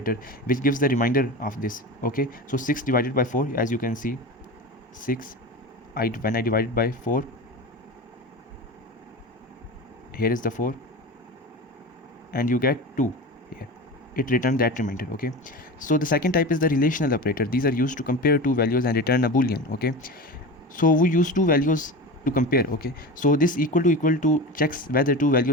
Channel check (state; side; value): normal; both; correlation 0.29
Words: which gives the remainder of this. Okay, so 6 divided by 4, as you can see, 6, when I divide by 4, here is the 4, and you get 2 here. It returns that remainder. Okay, so the second type is the relational operator. These are used to compare two values and return a boolean. Okay, so we use two values to compare. Okay, so this equal to checks whether two